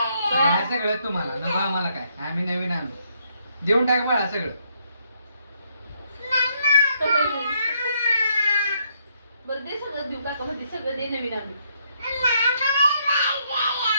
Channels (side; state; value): both; inverted; correlation -0.73